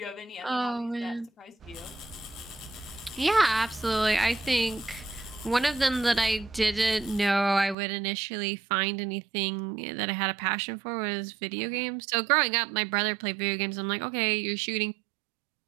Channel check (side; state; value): left; drops out; at 7.8 s